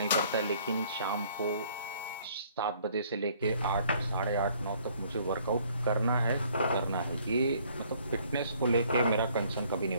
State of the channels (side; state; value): both; inverted; correlation -0.61